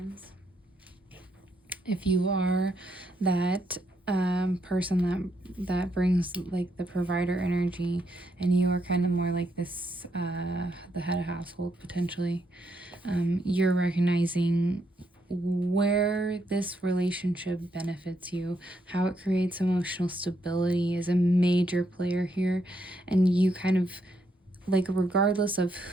If you are that person that brings like the provider energy, and you are kind of more like this the head of household potentially, you're recognizing where this relationship benefits you, how it creates emotional stability is a major player here. And you kind of like, regardless of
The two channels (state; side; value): normal; both; correlation 0.77